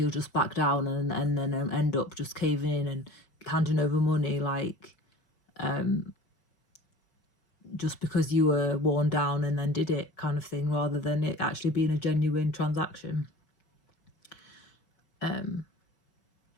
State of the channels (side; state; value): right; late; 4.7 ms